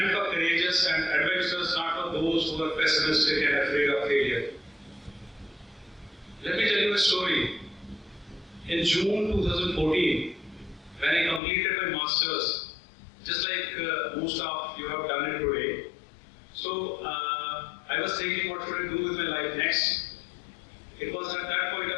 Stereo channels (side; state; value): right; drops out; at 11.4 s